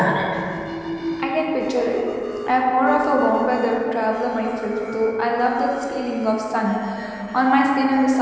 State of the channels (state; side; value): identical; both; correlation 1.00